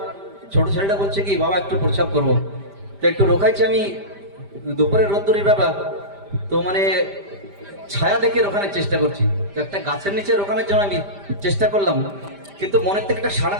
ছোট ছেলেটা বলছে কি বাবা একটু প্রস্রাব করবো। তো একটু রোখাইছি আমি, দুপুরের রোদ্দুরির ব্যাপার। তো মানে ছায়া দেখে রোখানোর চেষ্টা করছি। তো একটা গাছের নিচে রোখানোর জন্য আমি চেষ্টা করলাম, কিন্তু মনের থেকে একটা সাড়া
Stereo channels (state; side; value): late; left; 5.0 ms